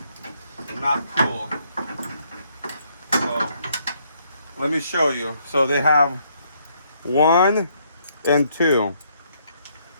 not cool. So, let me show you. So they have 1 and 2.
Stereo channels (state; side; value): inverted; both; correlation -0.71